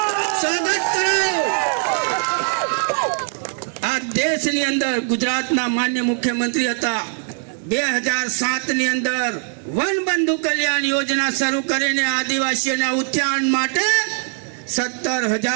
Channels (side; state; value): left; silent; 57 dB below the other